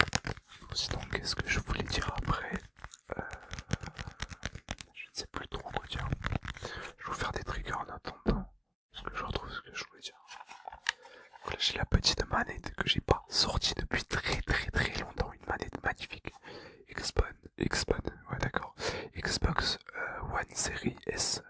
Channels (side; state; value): both; identical; correlation 1.00